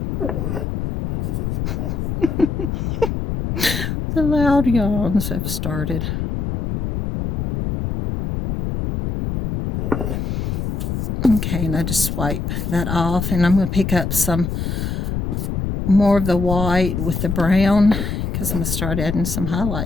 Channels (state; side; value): noise; left; rumble, 2 dB below the sound